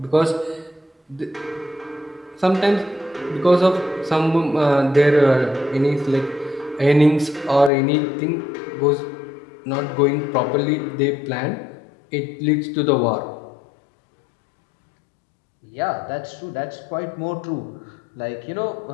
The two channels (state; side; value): drops out; right; at 7.7 s